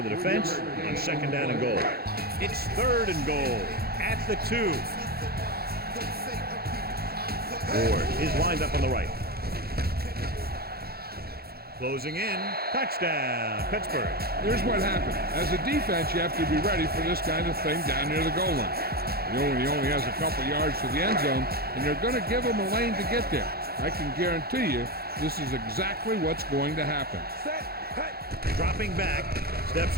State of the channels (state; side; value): late; left; 0.45 ms